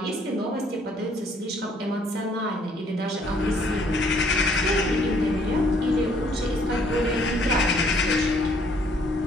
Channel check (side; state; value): both; normal; correlation 0.63